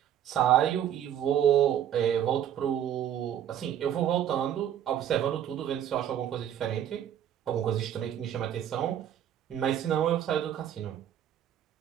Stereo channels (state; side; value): quieter; left; 10.2 dB